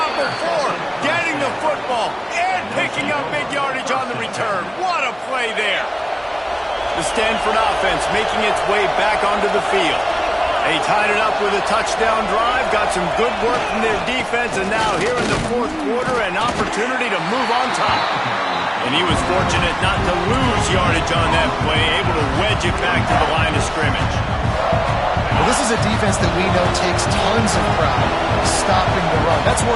before getting the football and picking up big yardage on the return. What a play there. The Stanford offense making its way back onto the field. They tied it up with a touchdown drive, got some good work from their defense, and now here in the fourth quarter, an opportunity to move on top. And he was fortunate not to lose yardage on that play, able to wedge it back to the line of scrimmage. Well, this is a defense that we know takes tons of pride stopping the run. That's where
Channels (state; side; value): identical; both; correlation 1.00